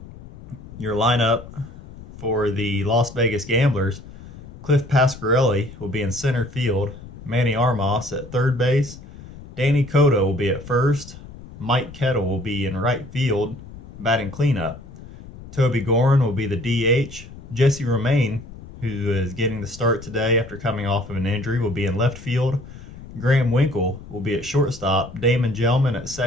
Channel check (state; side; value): noise; left; rumble, 16 dB below the sound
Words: Your lineup for the Las Vegas Gamblers, Cliff Pasquarelli will be in center field, Manny Armas at third base, Danny Cotto will be at first, Mike Kettle will be in right field, batting cleanup. Toby Gorin will be the DH. Jesse Romaine, who is getting the start today after coming off of an injury, will be in left field. Graham Winkle will be at shortstop, Damon Gelman at